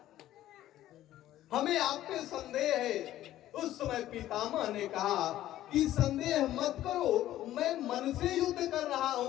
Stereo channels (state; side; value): quieter; right; 13.6 dB